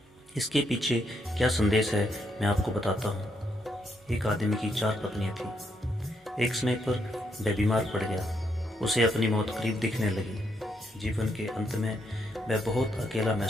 इसके पीछे क्या संदेश है मैं आपको बताता हूँ। एक आदमी की 4 पत्नियां थी। एक समय पर वह बीमार पड़ गया। उसे अपनी मौत करीब दिखने लगी। जीवन के अंत में वह बहुत अकेला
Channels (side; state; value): both; normal; correlation 0.77